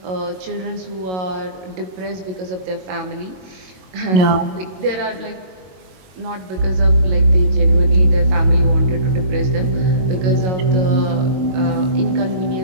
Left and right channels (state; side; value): late; left; 22 ms